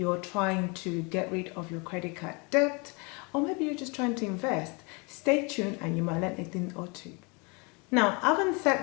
trying to get rid of your credit card debt, or maybe you're just trying to invest, stay tuned and you might learn a thing or two. Now, having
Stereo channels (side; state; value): right; quieter; 30.5 dB